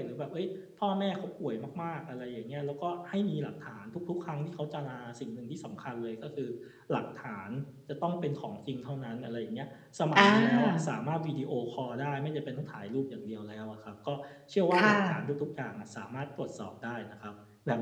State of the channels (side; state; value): both; identical; correlation 1.00